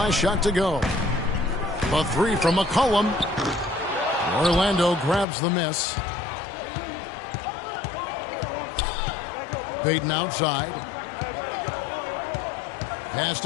shot to go. The three from McCollum. Orlando grabs the miss. Payton outside. Pass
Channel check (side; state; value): right; drops out; at 5.2 s